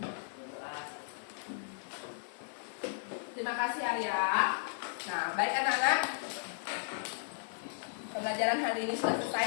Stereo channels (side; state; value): right; silent; digital silence